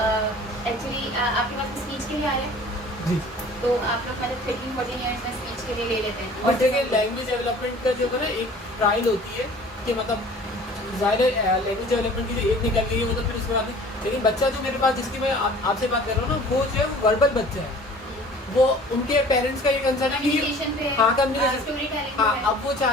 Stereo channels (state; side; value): normal; both; correlation 0.47